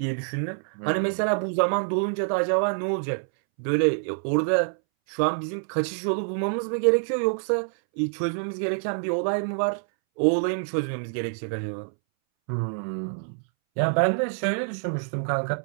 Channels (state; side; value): silent; left; 61 dB below the other